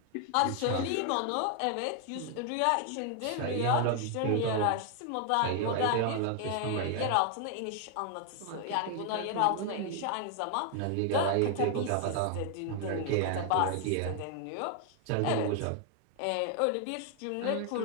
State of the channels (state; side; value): different; both; correlation 0.00